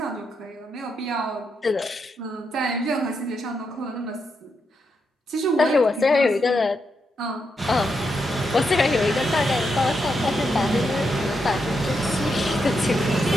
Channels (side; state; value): both; normal; correlation 0.82